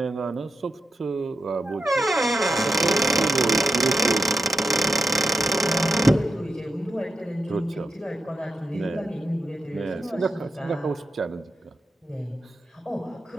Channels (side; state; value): both; normal; correlation 0.88